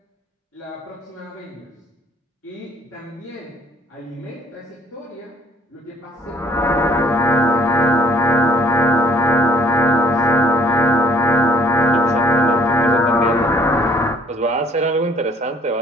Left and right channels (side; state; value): both; normal; correlation 0.59